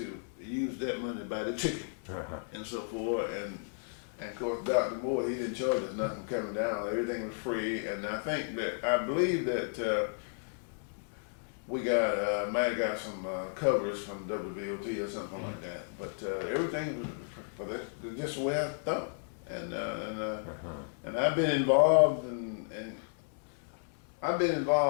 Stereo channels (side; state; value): right; silent; 55 dB below the other